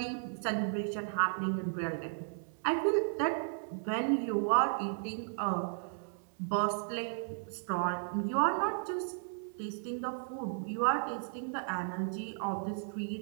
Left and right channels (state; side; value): silent; left; digital silence